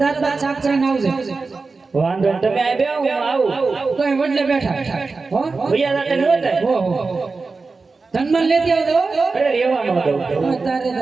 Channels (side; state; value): left; quieter; 4.1 dB